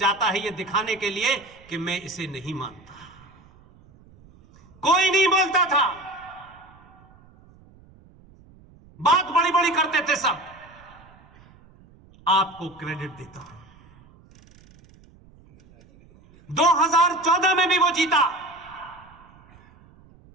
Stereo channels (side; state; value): right; noise; rumble, 26 dB below the sound